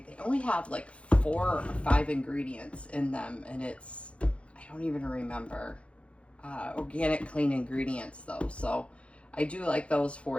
They only have like 4 or 5 ingredients in them. And it's, I don't even remember. Organic, clean ingredients though. So I do like those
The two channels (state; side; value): late; right; 0.061 ms